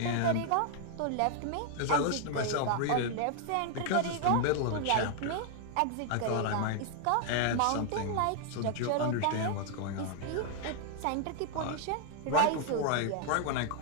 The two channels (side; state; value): both; different; correlation 0.00